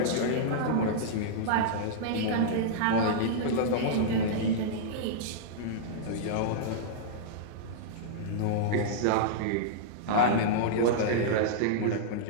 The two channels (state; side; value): different; both; correlation -0.02